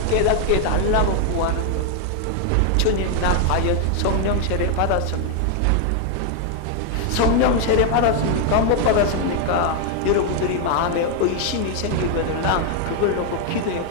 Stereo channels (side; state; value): both; different; correlation 0.00